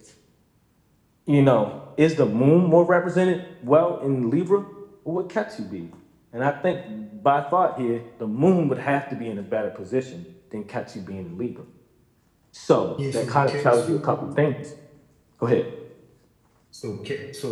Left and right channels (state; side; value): identical; both; correlation 1.00